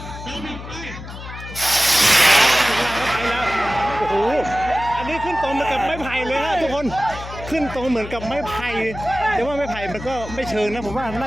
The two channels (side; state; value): left; noise; hum, 12 dB below the sound